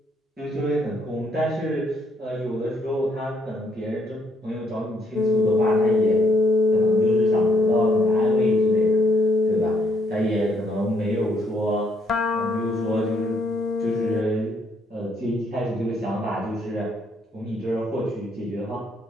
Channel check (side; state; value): both; normal; correlation 0.71